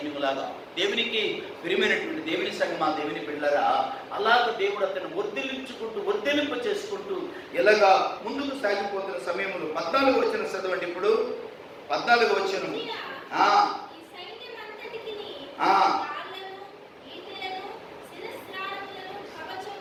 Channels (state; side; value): identical; both; correlation 1.00